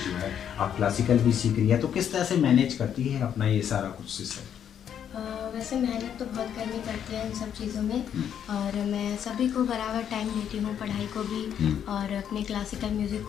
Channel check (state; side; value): quieter; right; 9.0 dB